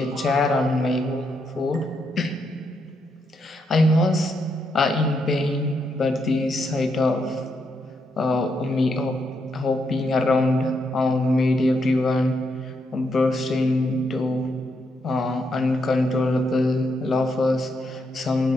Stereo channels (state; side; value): normal; both; correlation 0.79